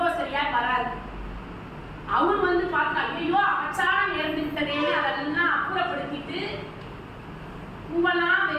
வராது. அவர் வந்து பார்த்தா, ஐயோ அபச்சாரம் நேர்ந்து விட்டதேன்னு அதெல்லாம் அப்புறப்படுத்திட்டு பூவெல்லாம்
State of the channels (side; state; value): both; identical; correlation 1.00